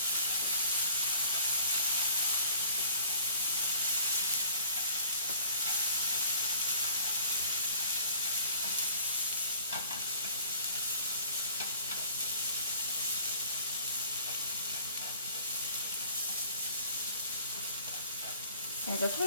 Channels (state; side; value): inverted; both; correlation -0.52